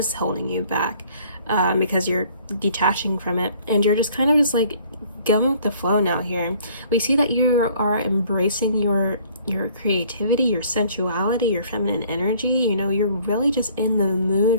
holding you back, because you're detaching from it, and you're just kind of just like going with the flow now. Here we see that you are embracing your creativity, your sensuality, your feminine energy. You're really just in the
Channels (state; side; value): inverted; both; correlation -0.57